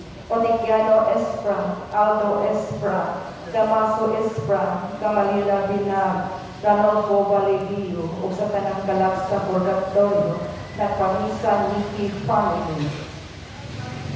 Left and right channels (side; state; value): both; identical; correlation 1.00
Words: Onigiano Espra, Aldo Espra, Damaso Espra, Gamalila Binag, Ranolfo Valevio, o sa tanang kalat sa purgatorio, nagpamisa Linky Family.